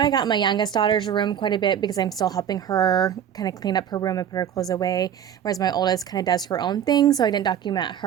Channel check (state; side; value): quieter; left; 9.3 dB